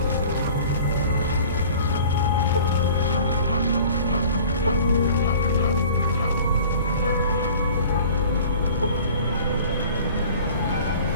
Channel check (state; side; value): inverted; both; correlation -0.46